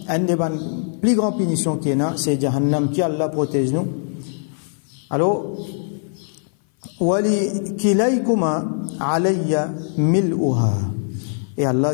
un des plus grandes punitions qu'il y a, c'est Jahannam qui Allah protège nous. Alors, Wali kilaykuma alayya mil'uha. Et Allah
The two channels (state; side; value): silent; right; 58 dB below the other